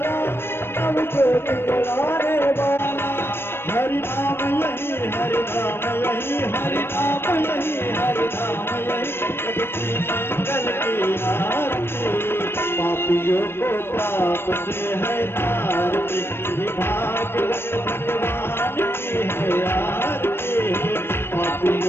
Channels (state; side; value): late; right; 0.11 ms